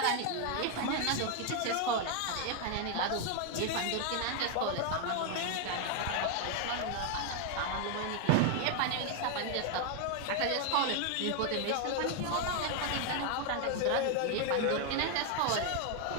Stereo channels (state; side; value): different; both; correlation 0.01